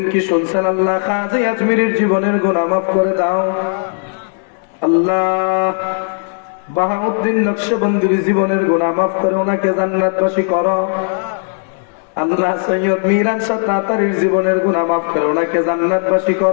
কি শুনছেন আল্লাহ খাজা আজমিরের জীবনের গুনাহ মাফ করে দাও? আল্লাহ বাহাউদ্দিন নকশবন্দির জীবনের গুনাহ মাফ করে ওনাকে জান্নাতবাসী করো। আল্লাহ সৈয়দ মিরান শাহ তাতারীর জীবনের গুনাহ মাফ করে ওনাকে জান্নাতবাসী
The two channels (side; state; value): right; silent; 61 dB below the other